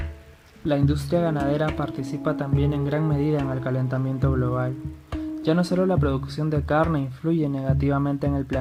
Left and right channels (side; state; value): both; identical; correlation 1.00